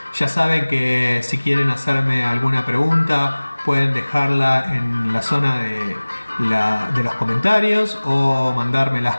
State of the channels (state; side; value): inverted; both; correlation -1.00